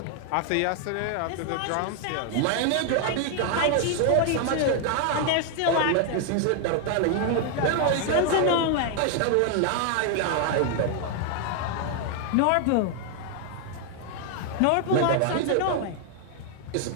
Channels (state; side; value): different; both; correlation 0.00